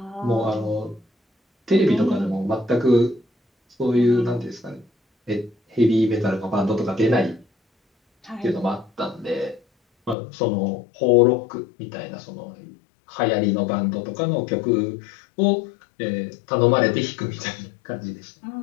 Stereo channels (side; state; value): right; drops out; at 10.2 s